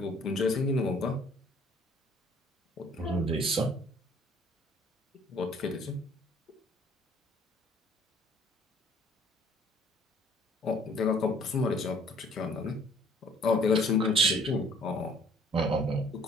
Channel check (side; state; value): both; normal; correlation 0.57